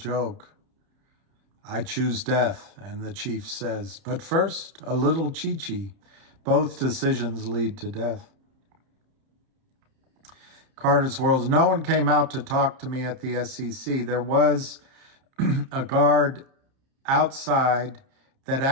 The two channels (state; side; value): late; left; 30 ms